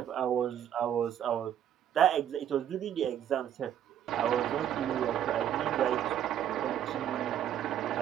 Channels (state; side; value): quieter; left; 10.3 dB